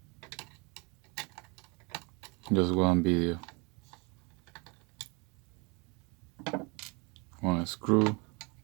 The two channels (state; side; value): quieter; left; 29.6 dB